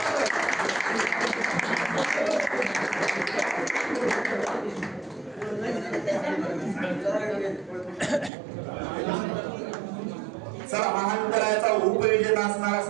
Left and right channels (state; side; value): drops out; left; at 8.3 s